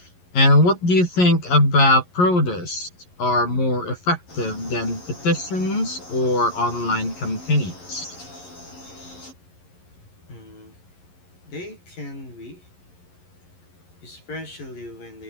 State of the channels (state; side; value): late; right; 11 ms